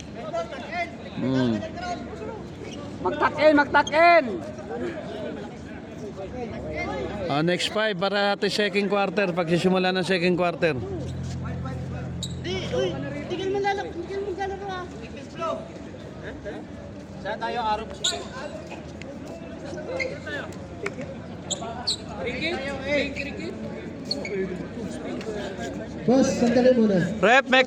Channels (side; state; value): both; identical; correlation 1.00